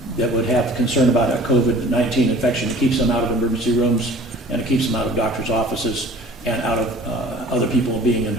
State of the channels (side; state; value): both; normal; correlation 0.47